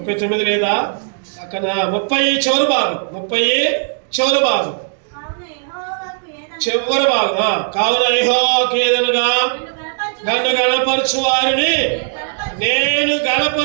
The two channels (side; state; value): left; silent; digital silence